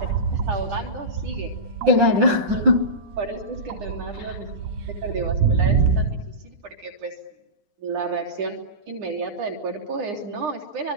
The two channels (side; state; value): left; late; 9.8 ms